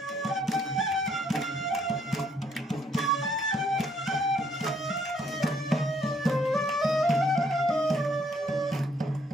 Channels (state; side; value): normal; both; correlation 0.68